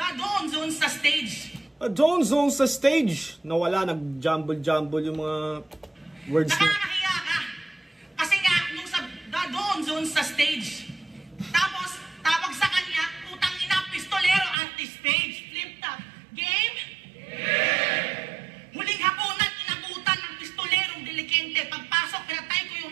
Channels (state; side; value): drops out; left; at 14.6 s